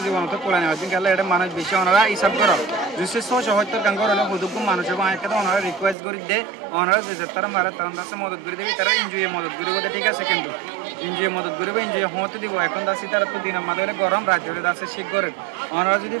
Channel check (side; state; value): left; drops out; at 6.0 s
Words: জীবনত কোলা নেওয়া দিন গেলে এটা মানুষ বেশি ওনারা হিসাব করো 270 গাঙ্গর হলে হুদুক মানুষ এবং একটা ওনারা রিকোয়েস্ট করে দে ওনারা যে তারা মারা তখন দাসে মদত করে দেবে তারা এনজয় মদত করে বোধ ঠিক আছে কিন্তু এনজয় মদত করবে এনজয় হতে দিব এখন দাসি তারা তো দিন আমাদের গরম রাজ্যের দাসে শীত করে ওনারা যদি